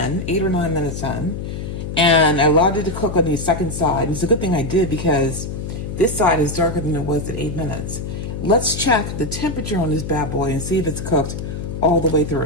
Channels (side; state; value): left; noise; hum, 6 dB below the sound